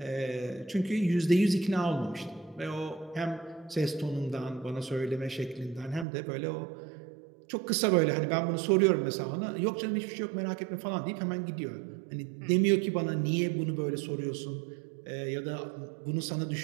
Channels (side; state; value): left; drops out; at 6.1 s